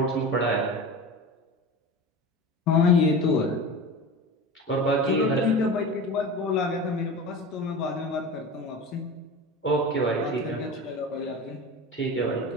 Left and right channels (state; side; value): normal; both; correlation 0.30